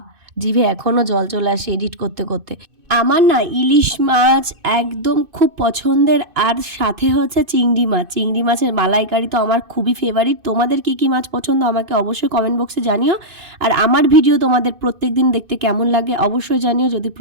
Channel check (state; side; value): late; left; 2.6 ms